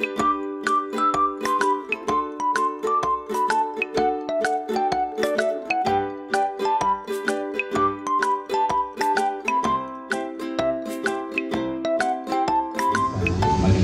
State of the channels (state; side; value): identical; both; correlation 1.00